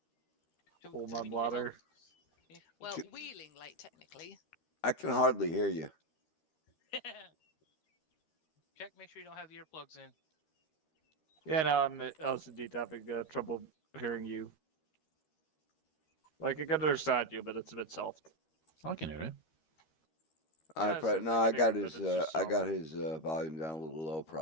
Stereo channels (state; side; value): late; right; 13 ms